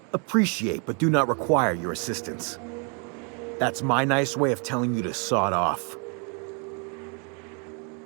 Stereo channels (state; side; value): quieter; left; 36.9 dB